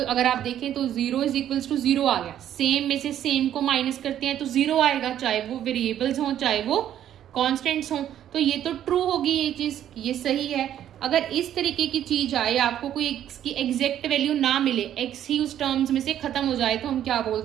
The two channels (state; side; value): quieter; left; 10.9 dB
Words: आप देखें तो 0 इज इक्वल्स टू 0 आ गया। सेम में से सेम को माइनस करते हैं तो 0 आएगा, चाहे वो वेरिएबल्स हों चाहे वो कॉन्स्टेंट्स हों। तो ये तो ट्रू होगी, ये चीज ये सही है। अगर इस तरीके की चीज आए, आपको कोई x की एग्जैक्ट वैल्यू ना मिले, x ही उस टर्म्स में से खत्म हो जाए, तो हम क्या